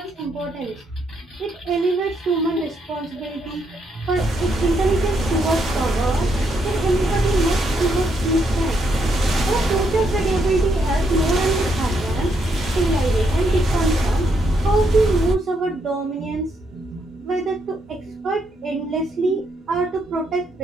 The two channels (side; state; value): both; normal; correlation 0.76